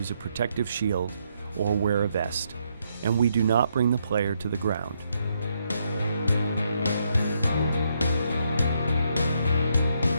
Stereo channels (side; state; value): both; inverted; correlation -0.76